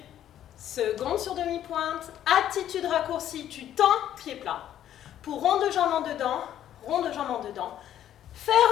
Seconde sur demi-pointe. Attitude raccourcie. Tu tends, pied plat. Pour rond de jambe en dedans. Rond de jambe en dedans.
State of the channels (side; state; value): right; quieter; 11.2 dB